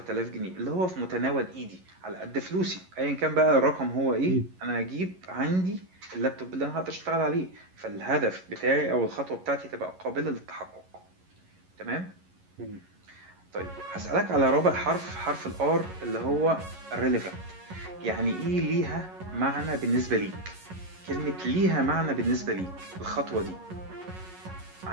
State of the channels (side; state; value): left; late; 11 ms